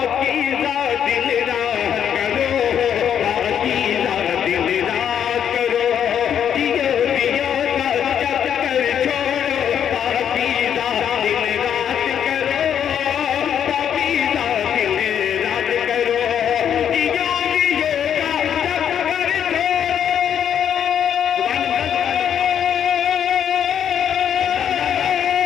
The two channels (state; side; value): quieter; right; 8.9 dB